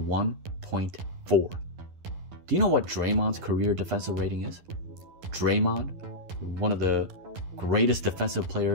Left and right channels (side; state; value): left; late; 11 ms